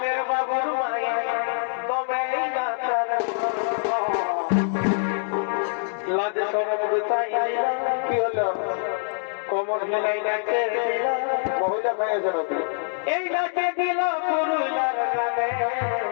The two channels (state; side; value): silent; right; digital silence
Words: বাবুর মায়ে তবে লাজ সরব গুতাই দিলাম কি হলো কোমর হেলাই নাচে দিলাম মহিলা খাইয়েছে নাকি এই নাচে দিল পুরুলার গানে